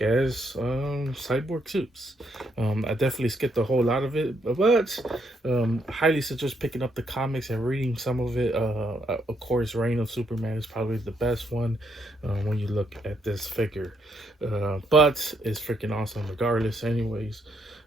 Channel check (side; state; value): both; normal; correlation 0.75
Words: as Cyborg Soups. I definitely skipped a whole lot of it, but highly suggest picking up the comics and reading some of it. Of course, Reign of Superman is probably the best one when you look at this figure, but it's freaking awesome regardless anyways.